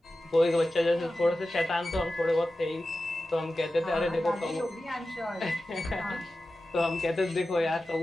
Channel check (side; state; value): both; normal; correlation 0.94